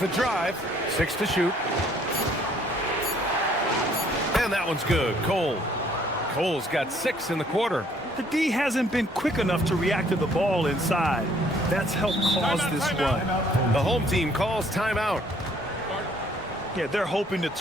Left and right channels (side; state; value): both; normal; correlation 0.62